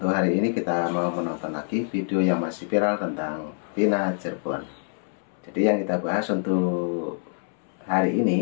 hari ini kita mau menonton lagi video yang masih viral tentang Tina Cirebon. Jadi yang kita bahas untuk hari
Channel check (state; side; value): silent; right; 61 dB below the other